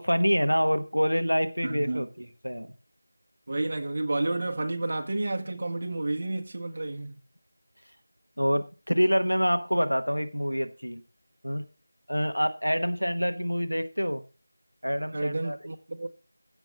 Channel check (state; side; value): inverted; both; correlation -0.99